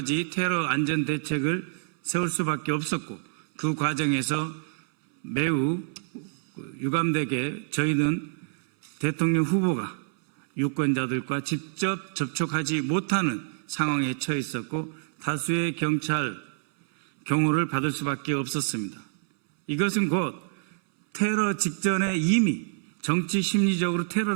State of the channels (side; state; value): left; silent; 60 dB below the other